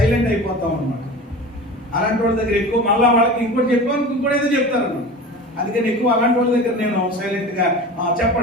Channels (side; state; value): both; normal; correlation 0.34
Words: అయిపోతాం అనమాట. అలాంటి వాళ్ళ దగ్గర ఎక్కువ మళ్ళీ వాళ్ళకి ఇంకోటి చెప్పాను ఇంకోటి ఏదో చెప్తారు అన్నమాట. అందుకని ఎక్కువ అలాంటి వాళ్ళ దగ్గర నేను సైలెంట్ గా